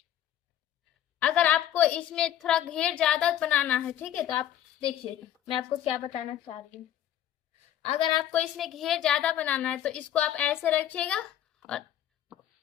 अगर आपको इसमें थोड़ा घेर ज्यादा बनाना है, ठीक है, तो आप देखिए मैं आपको क्या बताना चाह रही हूँ। अगर आपको इसमें घेर ज्यादा बनाना है तो इसको आप ऐसे रखिएगा और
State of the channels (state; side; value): quieter; right; 11.2 dB